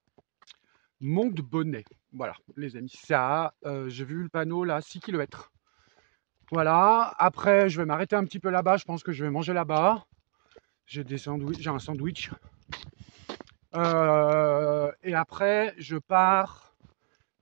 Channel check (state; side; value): silent; left; digital silence